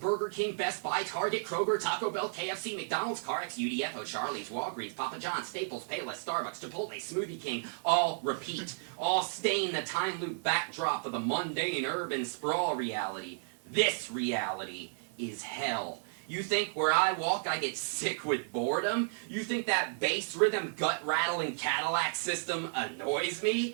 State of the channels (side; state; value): left; silent; 56 dB below the other